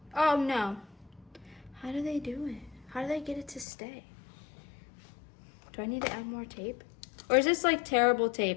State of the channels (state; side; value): drops out; right; at 3.7 s